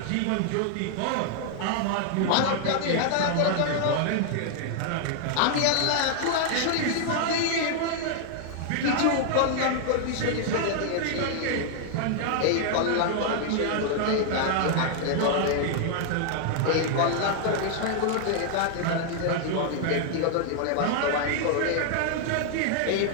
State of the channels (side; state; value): both; different; correlation 0.00